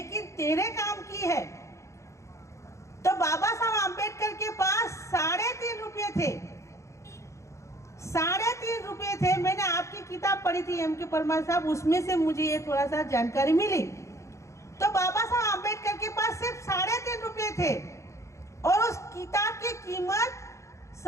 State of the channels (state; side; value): late; right; 0.14 ms